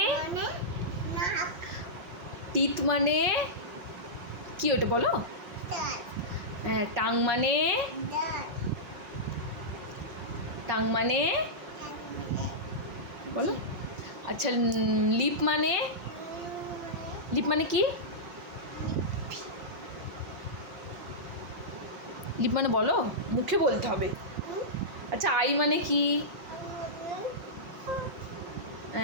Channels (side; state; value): left; late; 5.8 ms